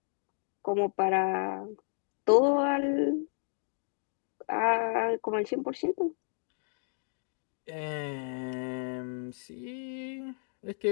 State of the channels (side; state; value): right; silent; digital silence